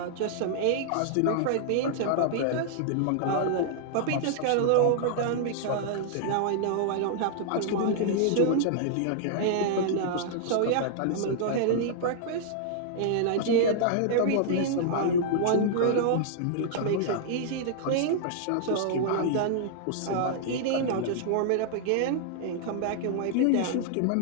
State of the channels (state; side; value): different; both; correlation -0.01